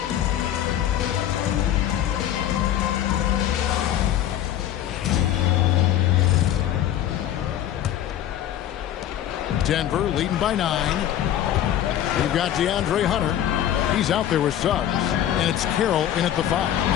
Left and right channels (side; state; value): right; quieter; 11.4 dB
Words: Denver leading by 9. We've got DeAndre Hunter. He's out there with Suggs. And it's Carroll in at the 5.